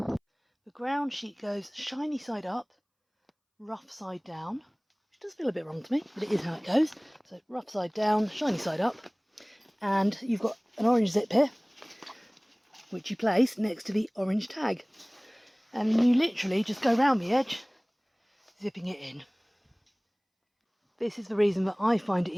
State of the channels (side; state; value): both; identical; correlation 1.00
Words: The ground sheet goes shiny side up, rough side down, which does feel a bit wrong to me, but it is how it goes. So rough side down, shiny side up, and you've got an orange zip here, which you place next to the orange tag. And you literally just go round the edge, zipping it in. This is the reason that I find it